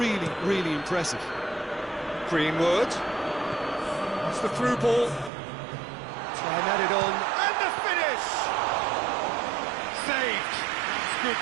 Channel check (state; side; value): drops out; left; at 5.3 s